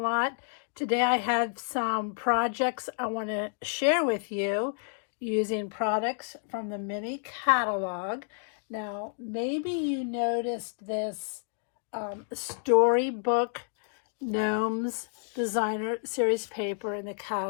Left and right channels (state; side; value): silent; right; digital silence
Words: Today I have some projects I want to share with you using products from the mini catalog. Now maybe you noticed this Storybook Gnomes Designer Series paper in the